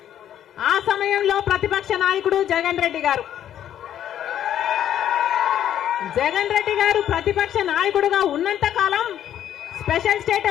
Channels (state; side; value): quieter; right; 10.6 dB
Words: ఆ సమయంలో ప్రతిపక్ష నాయకుడు జగన్ రెడ్డి గారు ప్రతిపక్ష నాయకుడుగా ఉన్నంత కాలం స్పెషల్